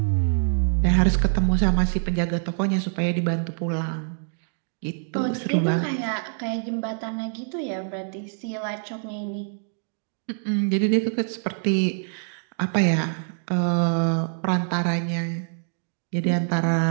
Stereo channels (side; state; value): left; silent; 62 dB below the other